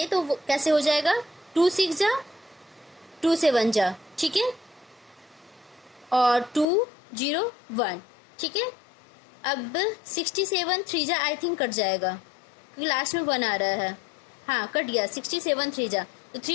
तो कैसे हो जाएगा 2 6 जा 2 7 जा। ठीक है, और 2 0 1। ठीक है, अब 67 3 जा आई थिंक कट जाएगा क्योंकि लास्ट में 1 आ रहा है। हाँ कट गया, 67 3 जा, तो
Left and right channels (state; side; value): drops out; right; at 6.7 s